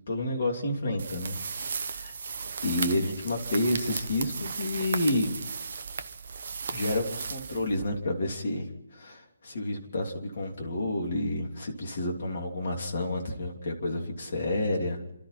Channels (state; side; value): inverted; both; correlation -0.75